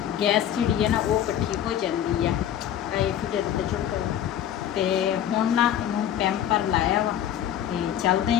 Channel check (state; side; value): quieter; right; 10.5 dB